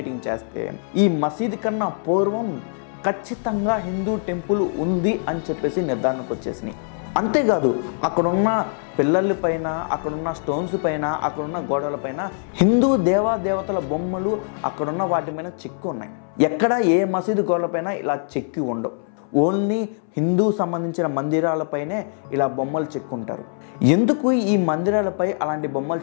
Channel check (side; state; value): right; silent; 63 dB below the other